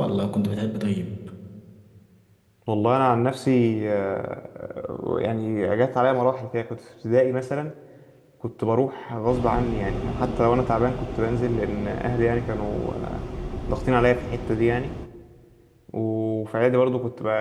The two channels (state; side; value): identical; both; correlation 1.00